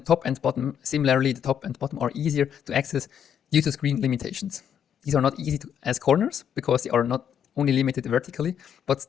and bottom, similarly, the top and bottom are easier to access due to screen limitations. These are not easy as corners because they are not only limited vertically, but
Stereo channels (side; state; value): right; quieter; 8.7 dB